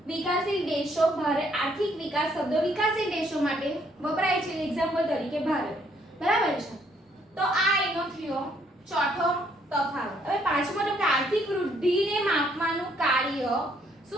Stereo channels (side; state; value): both; normal; correlation 0.68